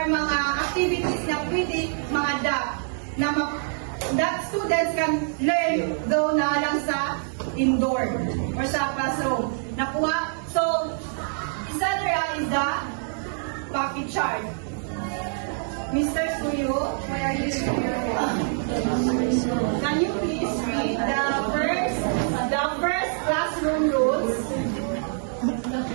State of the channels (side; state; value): left; silent; 61 dB below the other